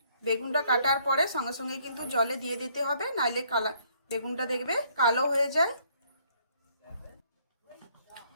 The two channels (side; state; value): both; inverted; correlation -0.65